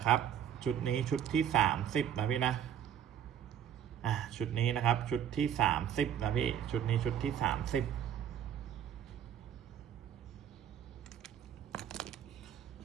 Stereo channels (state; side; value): quieter; left; 9.5 dB